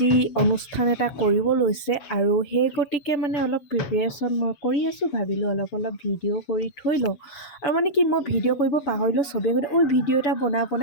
অনুষ্ঠান এটা কৰিব লৈছে আৰু সেই গতিকে অলপ প্ৰিপেৰেশ্যন মই কৰি আছোঁ। ভাবিলোঁ অলপ ভিডিঅ' কৰি থৈ লওঁ আৰু কি মই ভিডিঅ' কৰিব পাহৰিলোঁ। চবেই গ'লে ভিডিঅ' এটা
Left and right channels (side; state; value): right; late; 7.2 ms